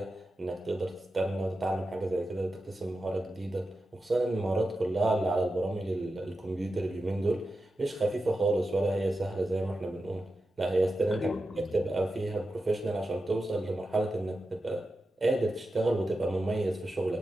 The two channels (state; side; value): normal; both; correlation 0.91